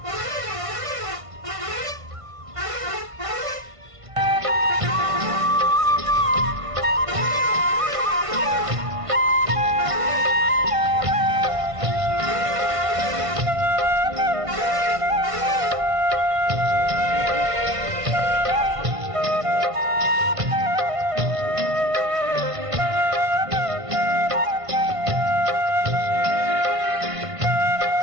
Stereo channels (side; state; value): left; late; 1.5 ms